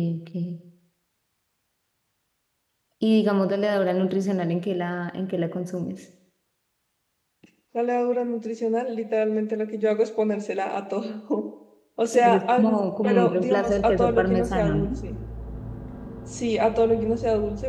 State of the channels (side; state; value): both; identical; correlation 1.00